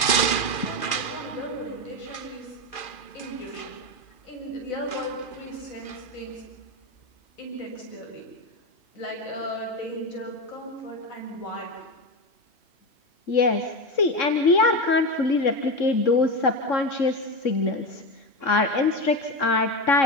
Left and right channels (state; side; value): late; right; 2.4 ms